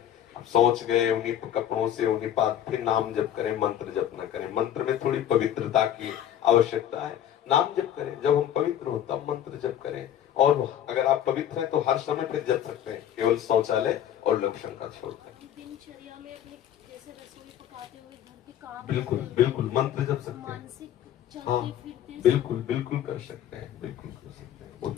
सोच गए उन्हीं कपड़ों से, उन्हीं पास फिर नाम जप करें, मंत्र जप न करें। मंत्र में थोड़ी पवित्रता की आवश्यकता है, नाम जप करें, जब हम पवित्र हो तब मंत्र जप करें। और अगर आप पवित्र हैं तो हर समय फिर जप सकते हैं, केवल शौचालय और लघु शंका छोड़कर। दिनचर्या में अपने जैसे रसोई पकाते हुए घर के काम, बिल्कुल मंत्र जप सकते हैं। मानसिक हाँ, चलते फिरते, बिल्कुल कर सकते हैं, बिल्कुल कर सकते हैं,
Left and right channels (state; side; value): quieter; right; 10.5 dB